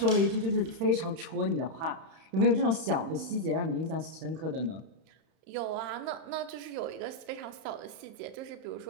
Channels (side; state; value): left; late; 31 ms